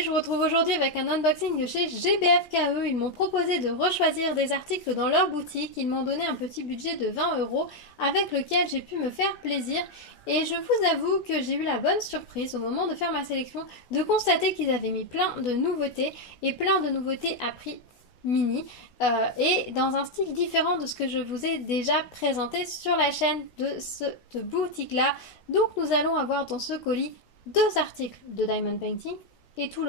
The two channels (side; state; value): right; late; 16 ms